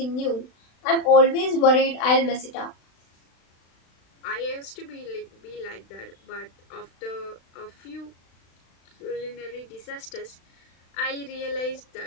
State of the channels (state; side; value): late; right; 36 ms